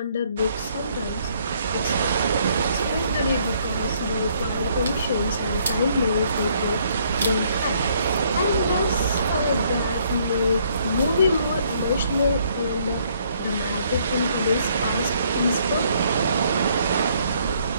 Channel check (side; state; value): both; inverted; correlation -0.66